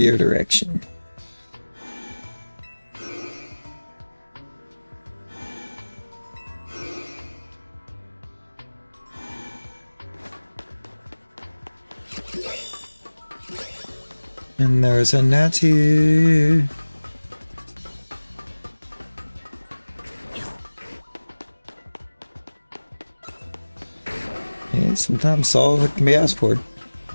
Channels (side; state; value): both; inverted; correlation -1.00